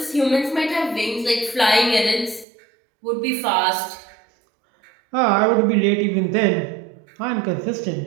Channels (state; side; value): drops out; left; at 2.5 s